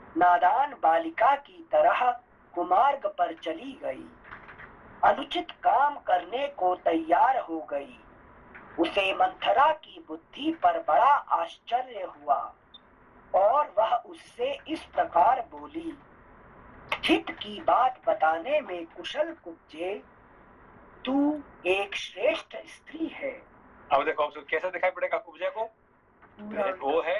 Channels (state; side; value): identical; both; correlation 1.00